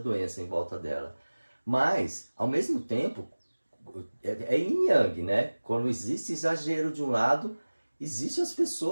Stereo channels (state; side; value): inverted; both; correlation -1.00